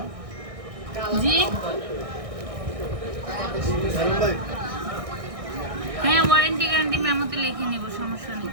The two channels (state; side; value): late; left; 1.6 ms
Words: জি হ্যাঁ ওয়ারেন্টি গ্যারান্টি মেমোতে লিখে নিব, সমস্যা নেই।